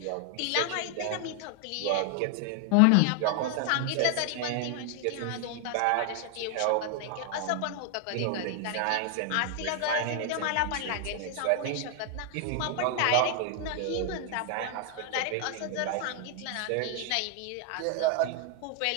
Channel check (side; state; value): both; different; correlation 0.00